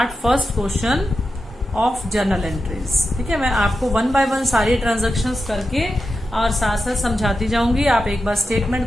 first question of journal entries, ठीक है। मैं आपको वन बाय वन सारी ट्रांजेक्शन्स करके और साथ साथ समझाती जाऊंगी, आप एक बार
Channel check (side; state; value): both; normal; correlation 0.90